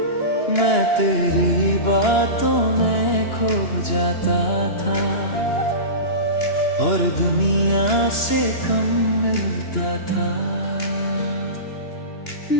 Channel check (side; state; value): right; late; 2.9 ms